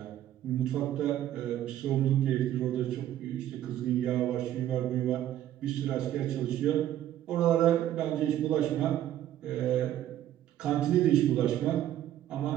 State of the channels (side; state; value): left; quieter; 12.2 dB